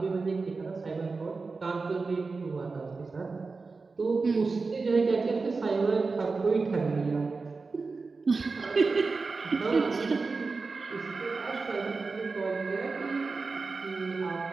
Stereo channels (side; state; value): left; quieter; 4.2 dB